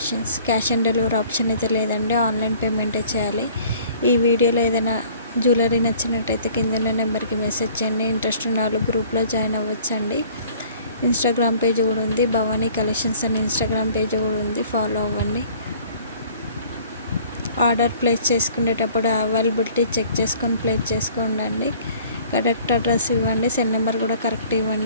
Cash on delivery option అయితే లేదండి, ఆన్లైన్ పేమెంటే చేయాలి. ఈ వీడియోలో ఏదైనా జ్యువెలరీ నచ్చినట్టయితే కింద ఉన్న నెంబర్కి మెసేజ్ చేయండి. ఇంట్రెస్ట్ ఉన్న వాళ్ళు గ్రూప్లో జాయిన్ అవ్వచ్చండి. ఇన్స్టాగ్రామ్ పేజ్ కూడా ఉంది, భవానీ కలెక్షన్స్ అని ఇన్స్టాగ్రామ్ పేజ్ కూడా ఉంది, ఫాలో అవ్వండి. ఆర్డర్ ప్లేస్ చేసుకునేటప్పుడు అవైలబిలిటీ చెక్ చేసుకొని ప్లేస్ చేసుకోండి. కరెక్ట్ అడ్రస్ ఇవ్వండి, సెల్ నెంబర్ కూడా కరెక్ట్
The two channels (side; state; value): both; inverted; correlation -0.52